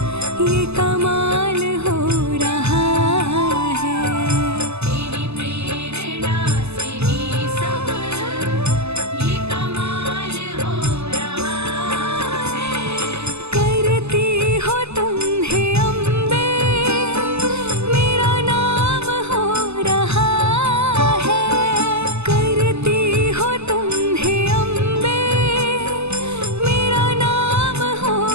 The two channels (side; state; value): left; late; 0.80 ms